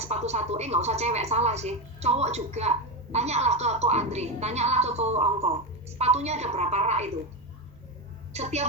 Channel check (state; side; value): normal; both; correlation 0.13